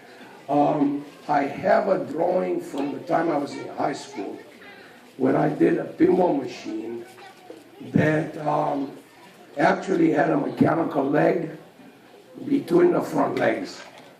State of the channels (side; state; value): both; identical; correlation 1.00